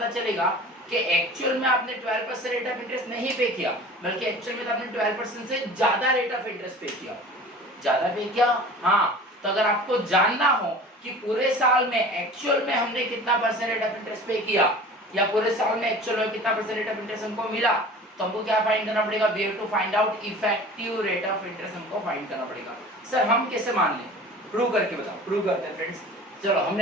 चलेगा कि एक्चुअल में आपने 12% रेट ऑफ इंटरेस्ट नहीं पे किया, बल्कि एक्चुअल में तो आपने 12% से ज्यादा रेट ऑफ इंटरेस्ट पे किया। ज्यादा पे किया? हाँ। तो अगर आपको जानना हो कि पूरे साल में एक्चुअल में हमने कितना परसेंट रेट ऑफ इंटरेस्ट पे किया या पूरे साल में एक्चुअल में कितना परसेंट रेट ऑफ इंटरेस्ट हमको मिला, तो हमको क्या फाइंड करना पड़ेगा? We have to find out effective rate of interest, हमको फाइंड करना पड़ेगा। सर हम कैसे मान लें? प्रूव करके बताओ। प्रूव करते हैं फ्रेंड्स। चलो,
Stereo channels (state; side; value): normal; both; correlation 0.41